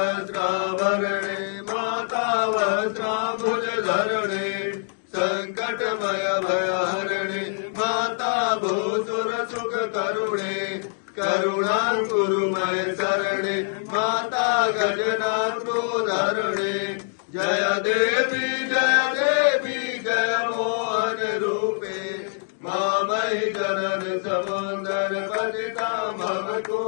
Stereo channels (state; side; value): silent; right; digital silence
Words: माता वस्त्राम्बुजधरणे संकटमय भयहरणे माता भूसुर सुख करुणे करुणाकुरुमय शरणे माता गजनाथोधरणे जय देवी जय मोहन रूपे मामयि जनन समुंदर पतिता मम